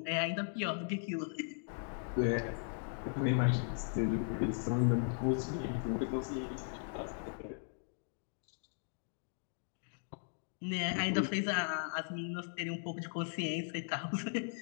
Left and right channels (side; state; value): right; silent; digital silence